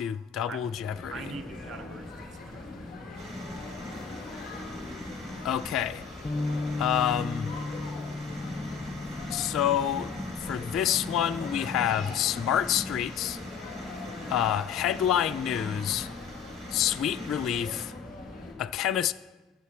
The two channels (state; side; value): quieter; right; 7.6 dB